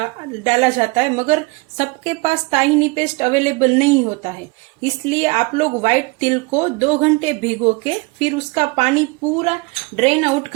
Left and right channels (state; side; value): quieter; left; 26.5 dB